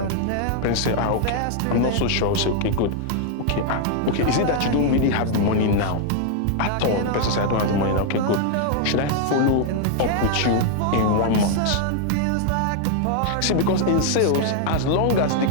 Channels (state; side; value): different; both; correlation 0.00